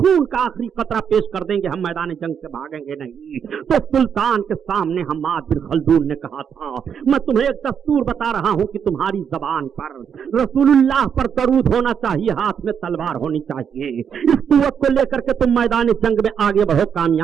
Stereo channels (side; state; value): left; quieter; 7.6 dB